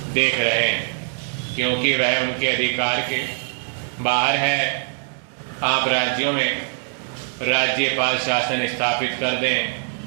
देख रहे हैं, क्योंकि वह उनके अधिकार के बाहर है। आप राज्यों में राज्यपाल शासन स्थापित कर दें,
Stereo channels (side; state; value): left; silent; 62 dB below the other